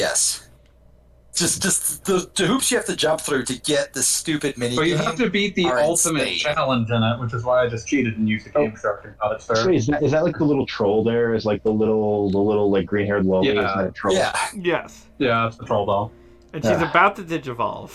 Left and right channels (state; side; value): identical; both; correlation 1.00